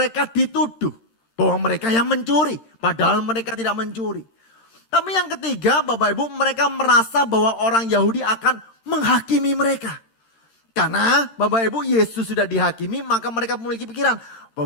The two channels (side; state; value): right; late; 13 ms